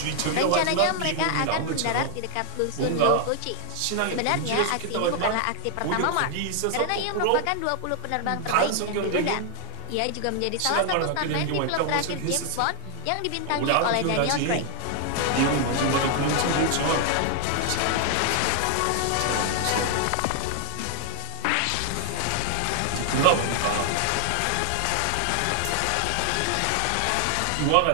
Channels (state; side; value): different; both; correlation 0.00